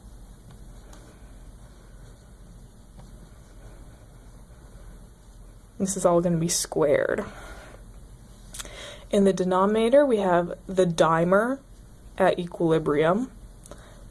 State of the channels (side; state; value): both; identical; correlation 1.00